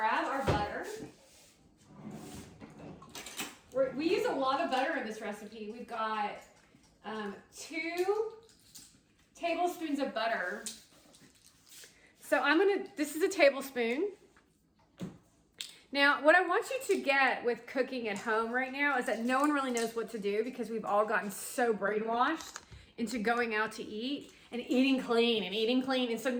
our butter. We use a lot of butter in this recipe. We've got 2 tablespoons of butter. So this is a tablespoon. Now, what I want you to get with cooking at home right now is that no one really knows what to do because we've all gotten so brainwashed into going out to eat and eating clean and eating clean. And so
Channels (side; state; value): both; identical; correlation 1.00